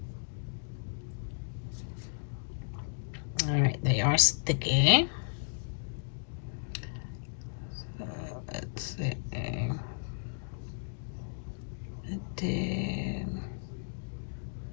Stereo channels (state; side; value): silent; right; digital silence